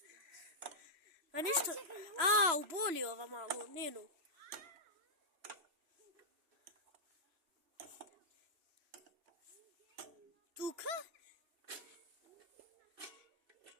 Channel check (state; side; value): late; left; 3.0 ms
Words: A ništa, uboli ova malo, Nenu. Tuka?